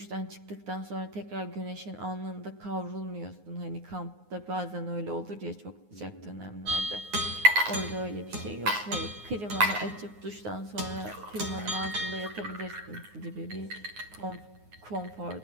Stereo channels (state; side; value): late; left; 9.6 ms